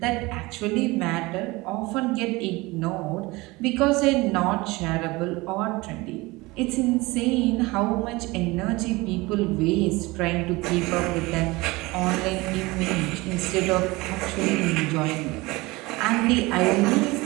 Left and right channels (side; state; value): left; quieter; 22.2 dB